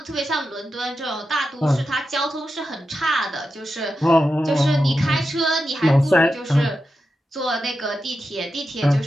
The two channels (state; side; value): normal; both; correlation 0.89